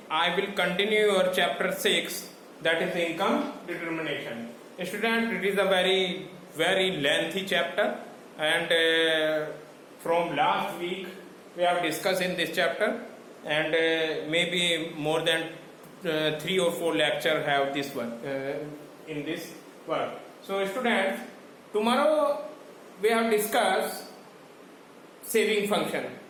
I will continue your chapter 6, that is income determination. Student, it is a very lengthy chapter, and from last week we have discussed in this chapter, and maybe more than 3 or 4 lectures have this one in this work. So students, tomorrow we have discussed saving function.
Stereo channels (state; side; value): identical; both; correlation 1.00